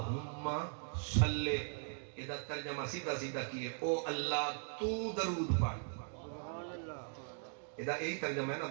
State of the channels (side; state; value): left; silent; 52 dB below the other